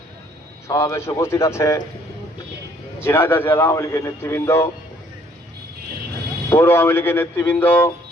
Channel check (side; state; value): both; normal; correlation 0.62